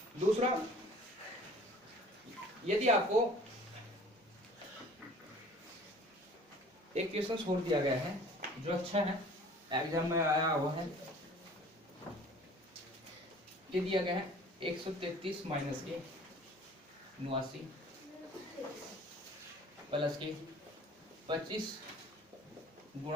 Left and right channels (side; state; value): both; normal; correlation 0.49